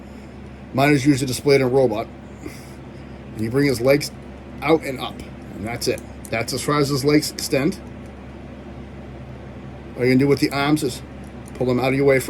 Mine is usually displayed in a robot. And you bring his legs out and up. And that's it. That's as far as his legs extend. All you're going to do with the arms is pull them out of your way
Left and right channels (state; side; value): identical; both; correlation 1.00